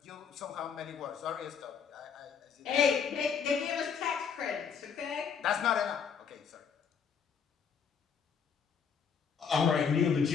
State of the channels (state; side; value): quieter; right; 6.7 dB